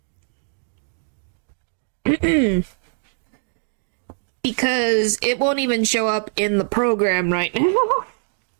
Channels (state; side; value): silent; left; digital silence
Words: Because it won't even show up in the program right now.